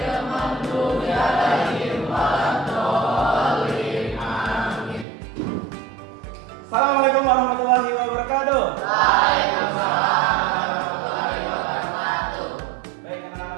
maghdubi 'alaihim waladdallin. Amin. Assalamualaikum warahmatullahi wabarakatuh. Waalaikumsalam warahmatullahi wabarakatuh. Baik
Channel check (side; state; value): left; drops out; at 5.1 s